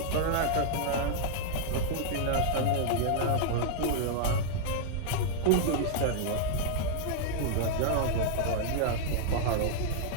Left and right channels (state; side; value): different; both; correlation -0.01